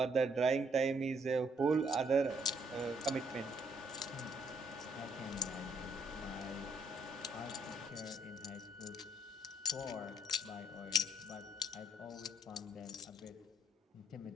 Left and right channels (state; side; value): normal; both; correlation 0.68